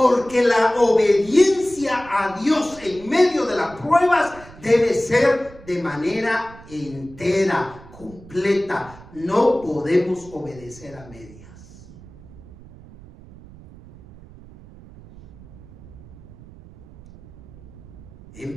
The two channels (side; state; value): right; noise; rumble, 20 dB below the sound